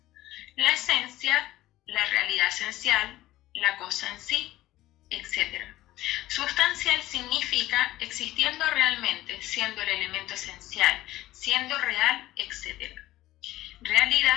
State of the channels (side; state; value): right; quieter; 15.9 dB